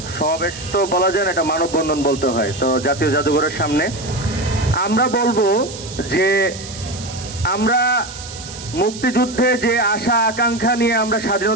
সমাবেশ তো বলা যায় না, এটা মানববন্ধন বলতে হয়। তো জাতীয় জাদুঘরের সামনে আমরা বলবো যে আমরা মুক্তিযুদ্ধে যে আশা আকাঙ্ক্ষা নিয়ে আমরা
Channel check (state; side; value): noise; right; hiss, 13 dB below the sound